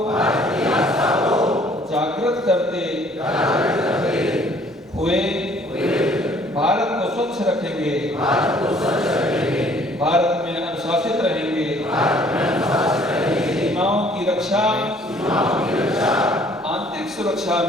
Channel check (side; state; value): both; normal; correlation 0.58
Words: जागृत करते हुए भारत को स्वच्छ रखेंगे। भारत में अनुशासित रहेंगे। सीमाओं की रक्षा, आंतरिक सुरक्षा